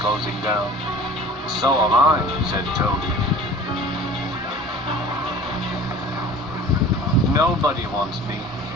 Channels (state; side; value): normal; both; correlation 0.43